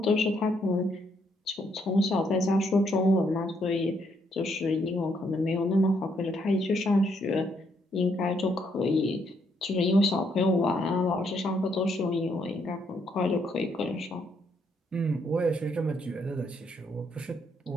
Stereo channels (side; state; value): both; normal; correlation 0.73